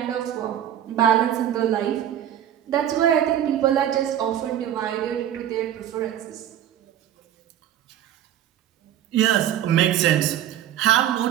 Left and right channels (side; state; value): left; quieter; 10.9 dB